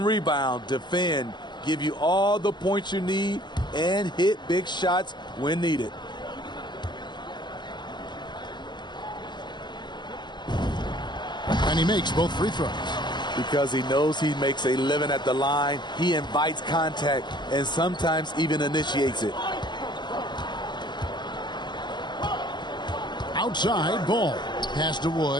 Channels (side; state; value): right; late; 0.21 ms